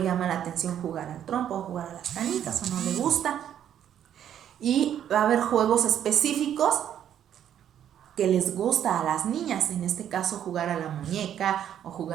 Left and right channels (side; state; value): left; quieter; 10.0 dB